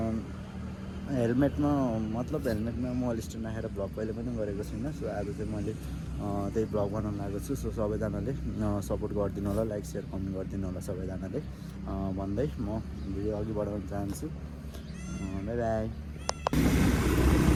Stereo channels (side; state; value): both; identical; correlation 1.00